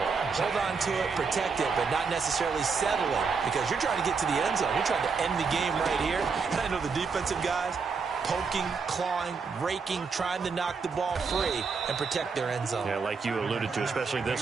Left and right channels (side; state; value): left; quieter; 5.2 dB